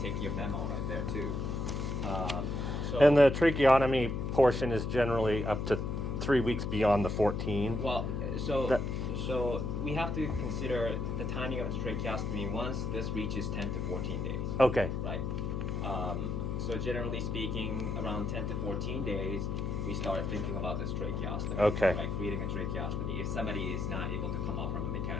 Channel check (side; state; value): left; noise; hum, 2 dB below the sound